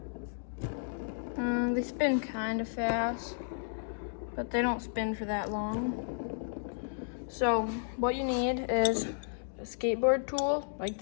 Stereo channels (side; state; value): right; silent; digital silence